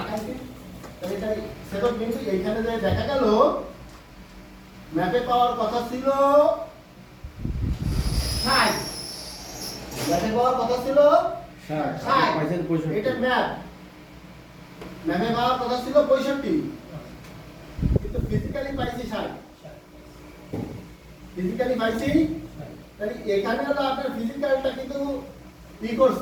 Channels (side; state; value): both; identical; correlation 1.00